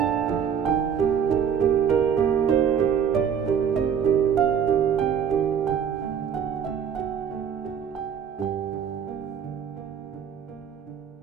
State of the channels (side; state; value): left; quieter; 7.8 dB